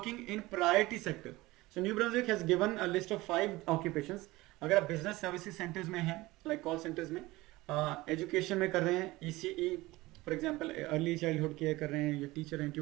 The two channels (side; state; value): left; quieter; 19.8 dB